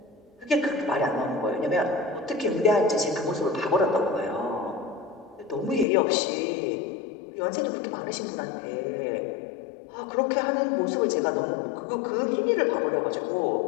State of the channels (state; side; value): drops out; right; at 5.9 s